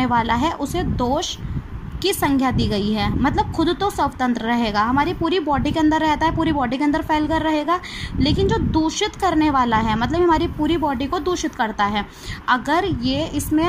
वाला है उसे दोष की संज्ञा दी गई है। मतलब खुद तो स्वतंत्र रहेगा, हमारी पूरी बॉडी के अंदर रहता है, पूरी बॉडी के अंदर फैल कर रहेगा, लेकिन जो दूषित करने वाला है मतलब हमारी पूरी बॉडी को दूषित करता है, अगर ये इसमें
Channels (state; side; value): identical; both; correlation 1.00